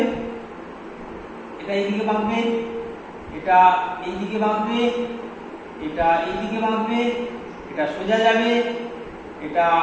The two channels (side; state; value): both; identical; correlation 1.00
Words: এটা এইদিকে বাঁকবে, এটা এইদিকে বাঁকবে, এটা এইদিকে বাঁকবে, এটা সোজা যাবে, এটা